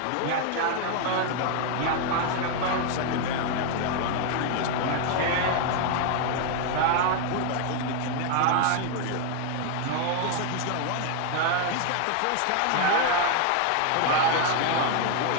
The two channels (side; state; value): both; different; correlation 0.01